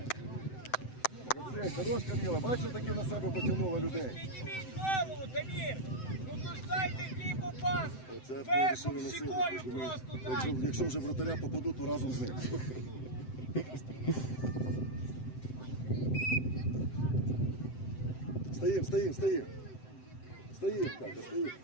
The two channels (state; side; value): late; right; 7.8 ms